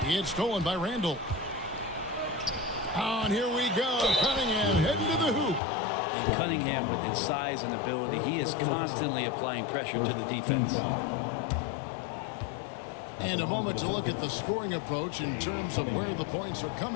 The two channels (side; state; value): right; drops out; at 5.6 s